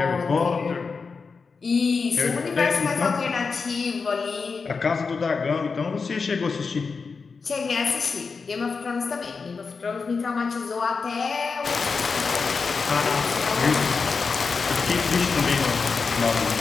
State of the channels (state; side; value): quieter; right; 4.9 dB